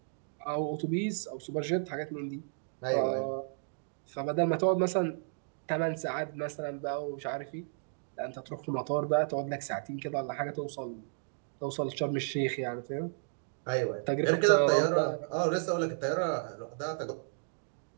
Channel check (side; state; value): left; silent; digital silence